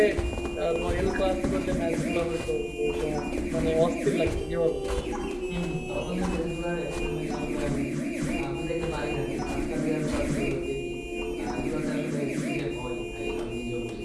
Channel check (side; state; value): both; identical; correlation 1.00